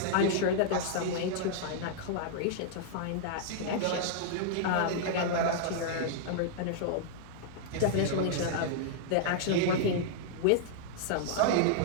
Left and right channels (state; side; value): different; both; correlation -0.02